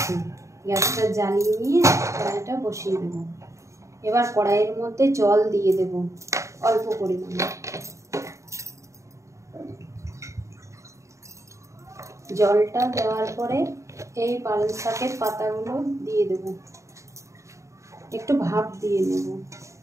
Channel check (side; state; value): left; late; 0.15 ms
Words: গ্যাসটা জ্বালিয়ে নিয়ে কড়াইটা বসিয়ে দেবো। এবার কড়াইয়ের মধ্যে জল দিয়ে দেব অল্প পরিমাণে। জলটা দেওয়ার পরে এই পালং শাকের পাতাগুলো দিয়ে দেব, একটু ভাপ দিয়ে নেব।